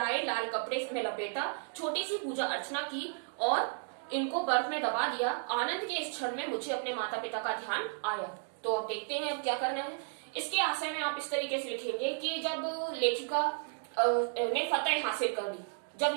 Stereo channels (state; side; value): silent; left; 55 dB below the other